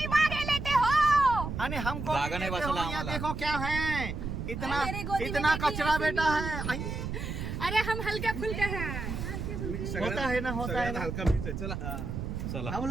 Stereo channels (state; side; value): noise; right; rumble, 5 dB below the sound